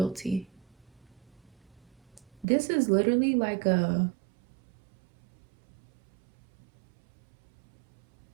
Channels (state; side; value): drops out; left; at 2.5 s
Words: This is literally like a